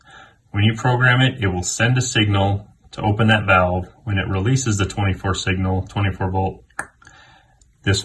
When you program it, it will send a signal to open that valve. When it releases the 24 signal, 24 volt, this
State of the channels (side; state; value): both; identical; correlation 1.00